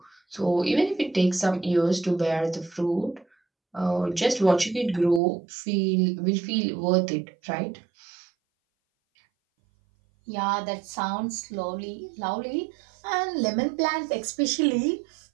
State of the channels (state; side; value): drops out; left; at 5.2 s